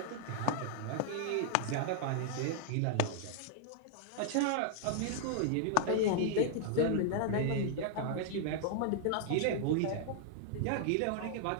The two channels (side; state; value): both; different; correlation -0.01